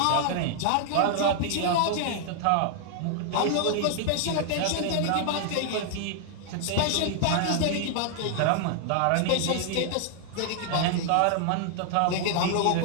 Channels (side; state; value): both; different; correlation 0.00